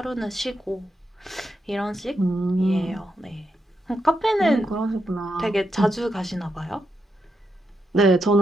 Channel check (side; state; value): both; normal; correlation 0.84